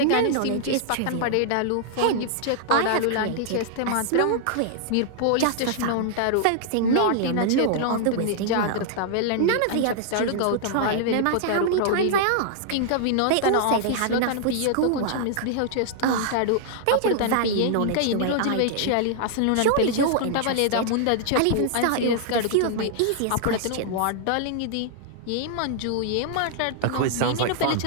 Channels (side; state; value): both; different; correlation -0.01